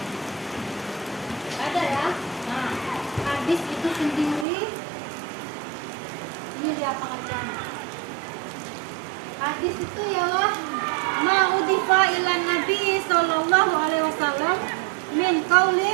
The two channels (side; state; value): left; drops out; at 4.5 s